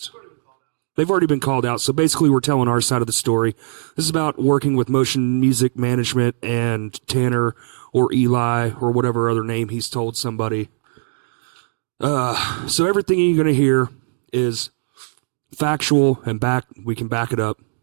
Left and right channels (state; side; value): silent; left; digital silence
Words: They've already been called out. So basically we're telling our side of the story. This is about working with motion music management and Tanner or Eli or whatever other name he's told somebody. So everything you're going to hear is factual and we can back it up.